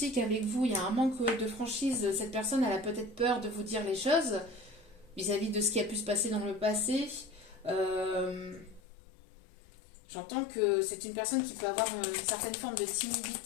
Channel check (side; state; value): right; drops out; at 8.8 s